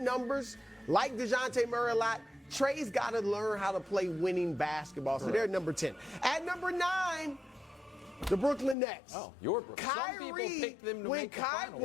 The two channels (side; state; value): right; drops out; at 8.8 s